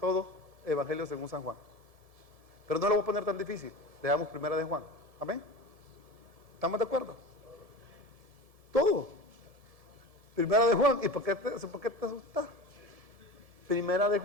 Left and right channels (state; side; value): late; left; 1.7 ms